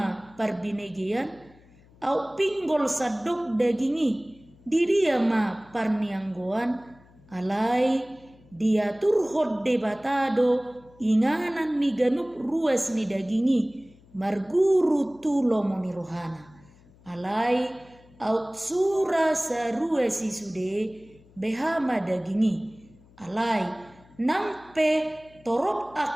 parbinegian au pinggol sadok dagingi di dia ma parnianggoan alai dia turhod debatado inganan ni ganup ruas ni dagingi marguru tulo moni rohana alai aut sura sarua si sude behama dagingi alai nampe torop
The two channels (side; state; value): left; noise; hum, 27 dB below the sound